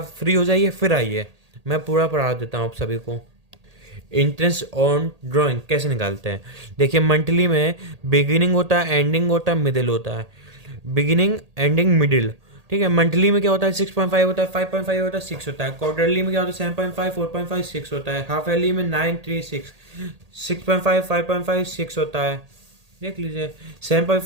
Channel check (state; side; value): late; left; 1.8 ms